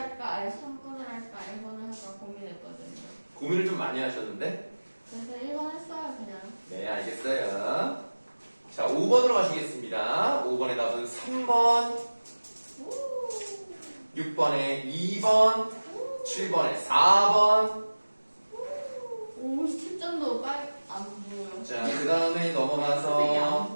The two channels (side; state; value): both; inverted; correlation -1.00